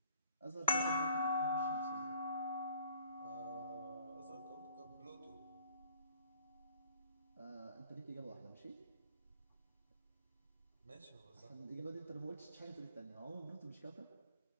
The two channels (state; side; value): inverted; both; correlation -0.56